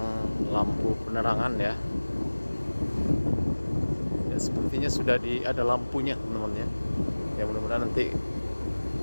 lampu penerangan ya. Ya, sepertinya sudah ada lampunya teman-teman ya. Ya, mudah-mudahan nanti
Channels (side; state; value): both; inverted; correlation -1.00